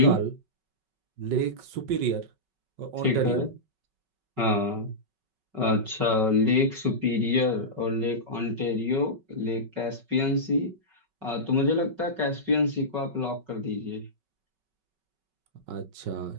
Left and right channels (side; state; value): left; late; 5.3 ms